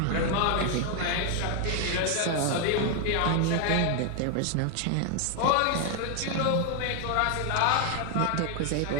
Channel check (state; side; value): different; both; correlation 0.01